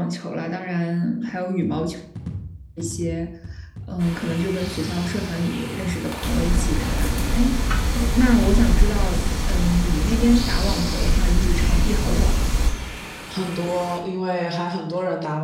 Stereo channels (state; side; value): identical; both; correlation 1.00